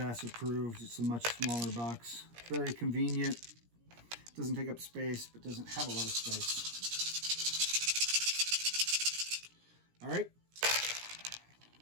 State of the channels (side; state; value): left; late; 17 ms